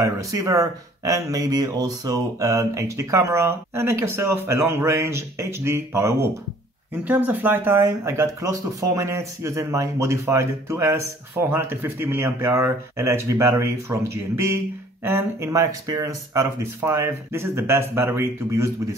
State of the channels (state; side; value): normal; both; correlation 0.56